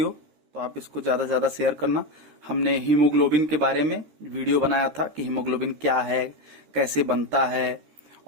तो आप इसको ज्यादा से ज्यादा शेयर करना। हमने हीमोग्लोबिन के बारे में वीडियो बनाया था कि हीमोग्लोबिन क्या है, कैसे बनता है,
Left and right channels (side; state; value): left; late; 13 ms